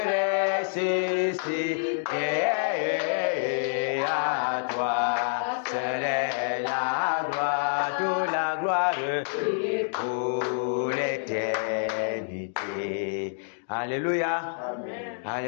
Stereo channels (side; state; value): right; silent; digital silence